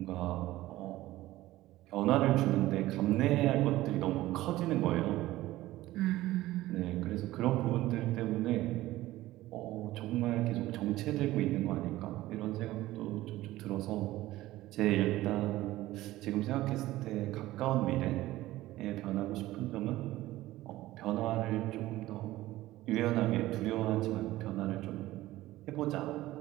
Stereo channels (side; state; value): left; quieter; 16.5 dB